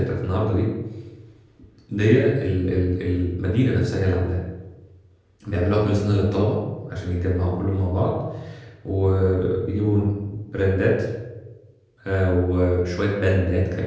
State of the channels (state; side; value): identical; both; correlation 1.00